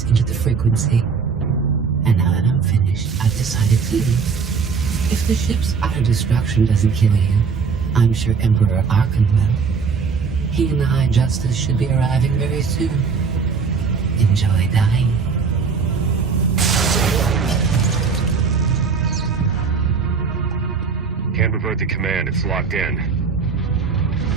into the frequency. And now that I'm finished, I've decided to leave. If the ship's utter destruction doesn't kill you, I'm sure Emperor Arkan will. He and the High Justice should be arriving very soon. Enjoy dying. Can't revert the command, it's locked in.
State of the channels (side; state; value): left; quieter; 5.5 dB